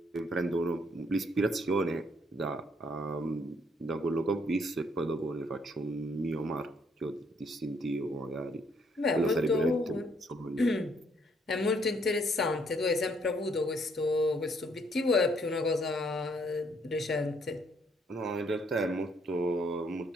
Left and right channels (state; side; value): normal; both; correlation 0.69